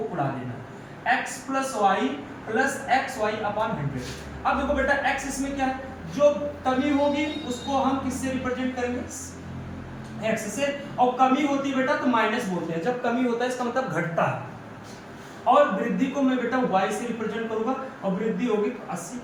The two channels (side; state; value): both; identical; correlation 1.00